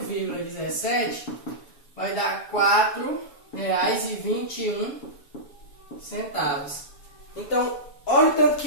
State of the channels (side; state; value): right; late; 7.1 ms